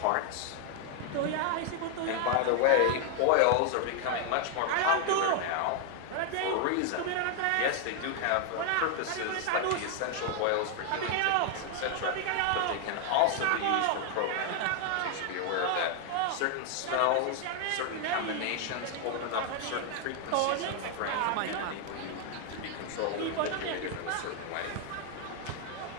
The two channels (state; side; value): different; both; correlation 0.00